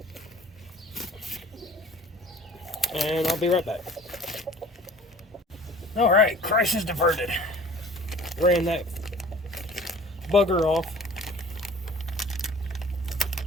and I'll be right back. All right, crisis diverted. Ran that bugger off.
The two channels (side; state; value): both; normal; correlation 0.47